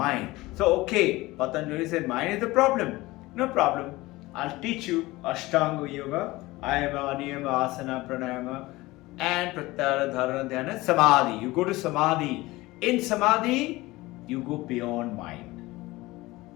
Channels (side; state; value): right; quieter; 20.0 dB